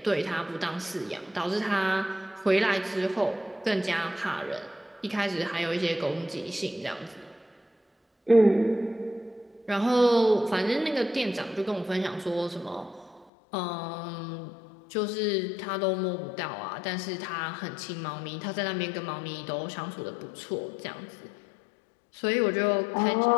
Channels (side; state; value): right; drops out; at 13.2 s